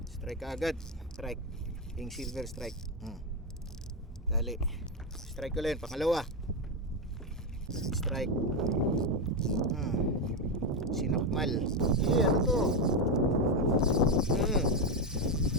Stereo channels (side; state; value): both; normal; correlation 0.08